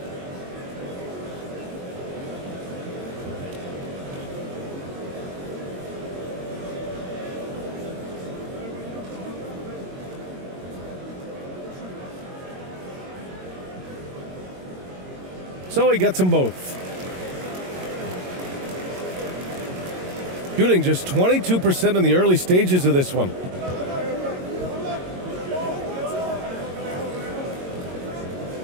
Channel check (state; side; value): late; left; 22 ms